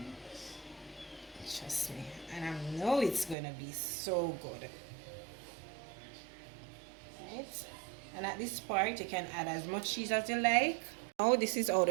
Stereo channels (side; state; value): left; drops out; at 3.4 s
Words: Trust me, and I know it's gonna be so good. Right, and at this part you can add as much cheese as you like. Now this is how